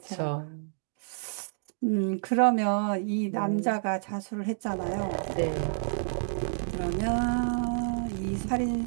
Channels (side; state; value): left; silent; digital silence